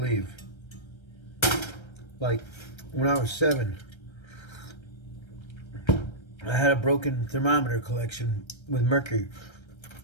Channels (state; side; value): late; right; 1.3 ms